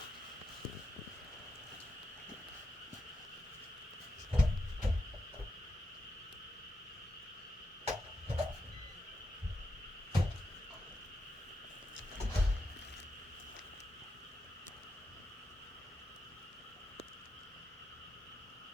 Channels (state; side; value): normal; both; correlation 0.85